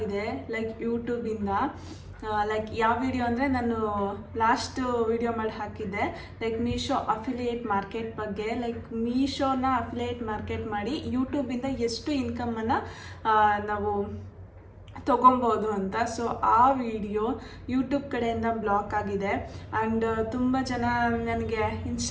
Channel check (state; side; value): identical; both; correlation 1.00